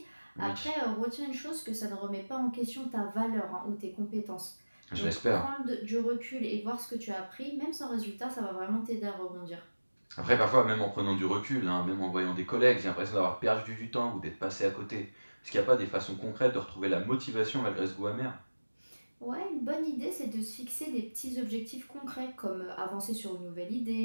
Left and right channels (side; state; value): both; inverted; correlation -1.00